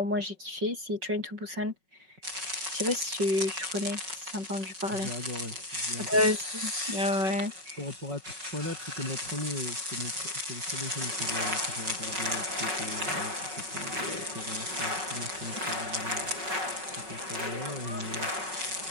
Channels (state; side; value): late; left; 5.4 ms